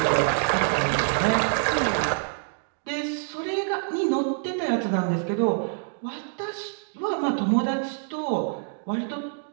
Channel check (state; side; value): silent; left; digital silence